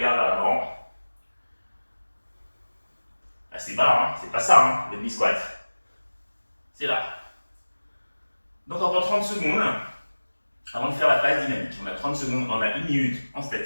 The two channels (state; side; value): inverted; both; correlation -1.00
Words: vers l'avant. Assez bas, hein. C'est pas ça, hein, le demi-squat. C'est là. Donc, encore 30 secondes avant de faire la phase dynamique. On a 30 secondes, on a 1 minute en